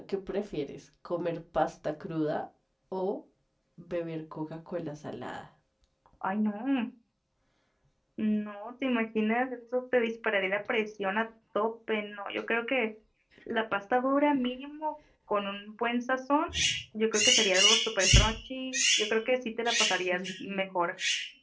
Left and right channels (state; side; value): identical; both; correlation 1.00